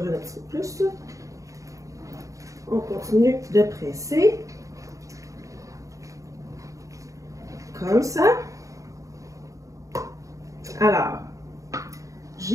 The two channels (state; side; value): late; left; 0.16 ms